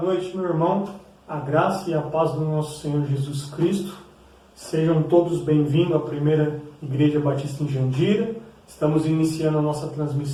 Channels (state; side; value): identical; both; correlation 1.00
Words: noite, meu irmão. A graça e a paz do nosso Senhor Jesus Cristo. Sejam todos bem-vindos à primeira Igreja Batista em Jandira. Estamos iniciando a nossa